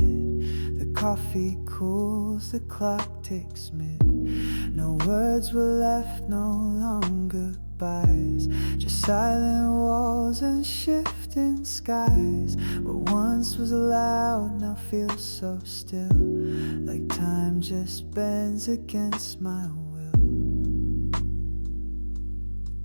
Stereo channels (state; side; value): inverted; both; correlation -1.00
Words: The coffee cools, the clock ticks mid. No words were left, no longer goodbyes. Just silent walls and shifting skies. What once was loud now feels so still, like time just bends against my will.